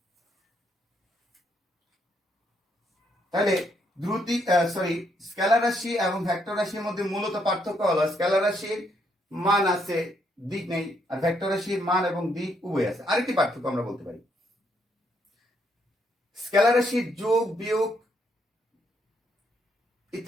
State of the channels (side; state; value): both; normal; correlation 0.74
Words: তাহলে স্কেলার রাশি এবং ভেক্টর রাশির মধ্যে মূলত পার্থক্য হলো স্কেলার রাশির মান আছে, দিক নেই, আর ভেক্টর রাশির মান এবং দিক উভয় আছে। আরেকটি পার্থক্য আমরা বলতে পারি, স্কেলার রাশির যোগ বিয়োগ